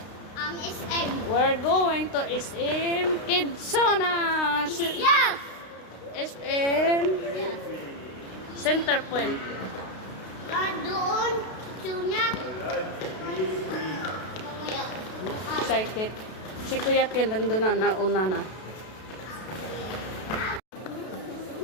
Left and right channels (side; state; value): right; late; 32 ms